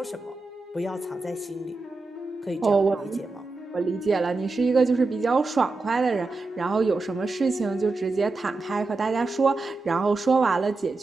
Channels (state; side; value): quieter; left; 3.5 dB